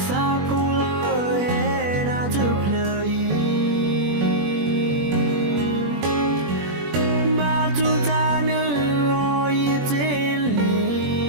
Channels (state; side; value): late; left; 21 ms